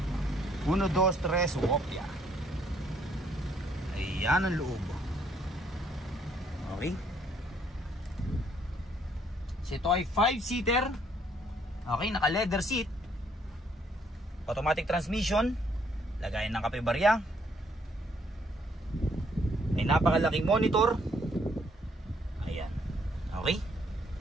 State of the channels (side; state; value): both; normal; correlation 0.67